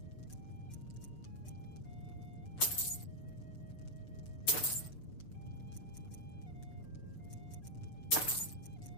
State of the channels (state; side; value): late; right; 6.7 ms